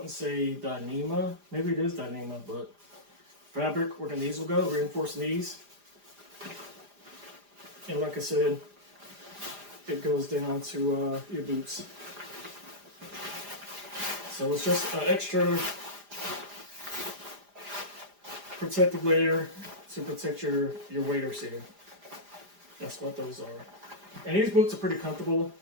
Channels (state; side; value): late; left; 4.9 ms